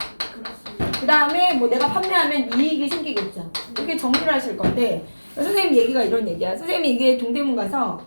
그 다음에 뭐 내가 판매하면 이익이 생기겠죠. 이렇게 정리를 하실 건데 선생님 얘기가 이런 얘기야. 선생님이 이게 동대문 가서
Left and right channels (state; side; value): inverted; both; correlation -1.00